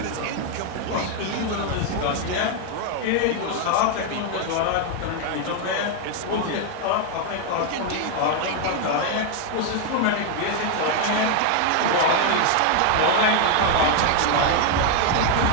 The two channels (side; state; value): both; different; correlation 0.01